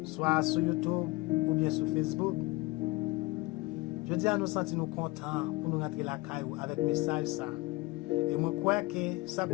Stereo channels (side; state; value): right; quieter; 22.9 dB